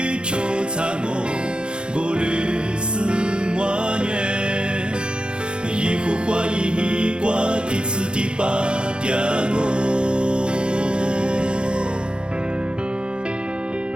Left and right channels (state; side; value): late; left; 0.052 ms